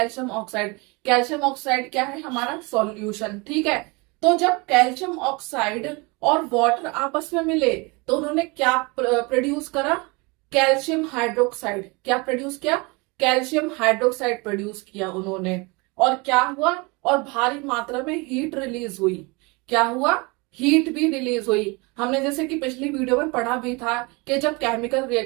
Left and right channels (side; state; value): left; quieter; 27.5 dB